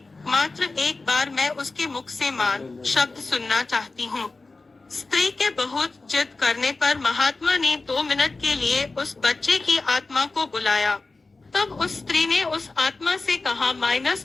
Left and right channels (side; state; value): right; quieter; 3.6 dB